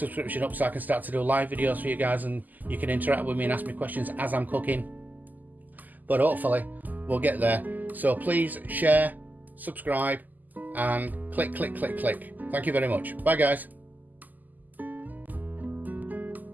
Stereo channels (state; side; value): late; left; 0.083 ms